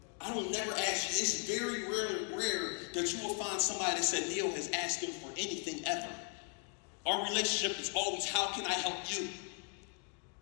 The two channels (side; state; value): right; quieter; 39.3 dB